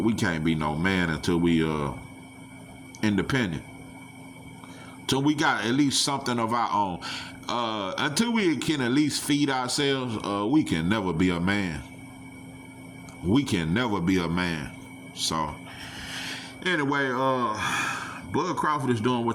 we can't be no man until we independent. Till we got at least something of our own. Until we can at least feed ourselves, we can never be a man. We can never be a man. So anyway, Bud Crawford is doing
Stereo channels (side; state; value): both; identical; correlation 1.00